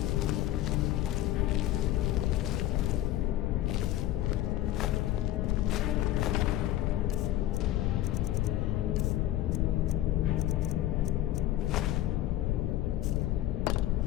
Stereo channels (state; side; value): quieter; right; 14.1 dB